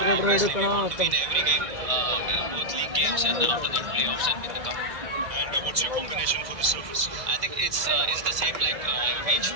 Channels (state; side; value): late; left; 2.3 ms